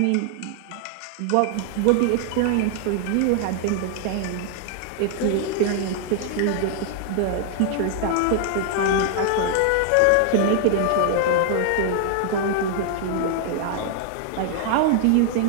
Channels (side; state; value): both; different; correlation 0.00